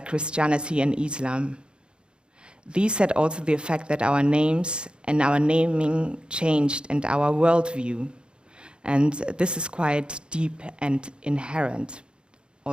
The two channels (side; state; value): left; late; 0.053 ms